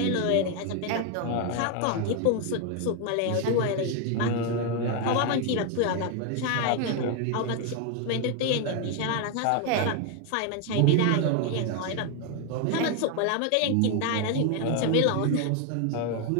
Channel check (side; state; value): both; different; correlation 0.01